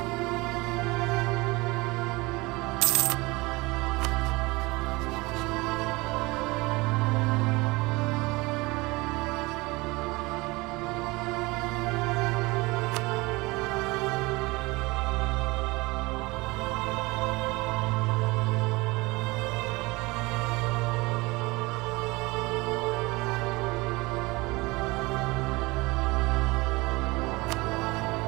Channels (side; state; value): left; quieter; 23.2 dB